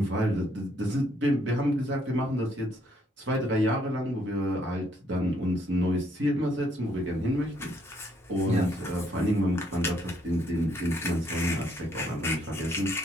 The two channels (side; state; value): both; normal; correlation 0.70